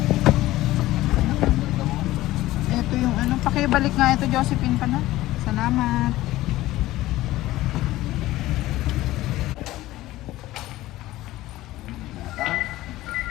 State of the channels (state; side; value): quieter; right; 16.5 dB